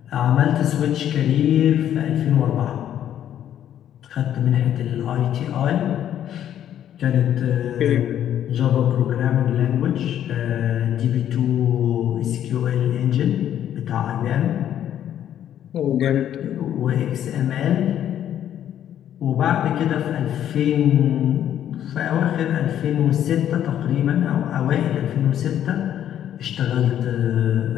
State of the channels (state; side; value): quieter; right; 10.6 dB